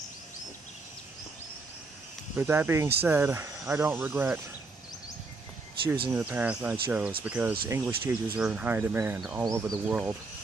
But that being said, I don't regret choosing the path I chose, because English teachers are in high demand all over the world.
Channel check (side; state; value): left; quieter; 3.7 dB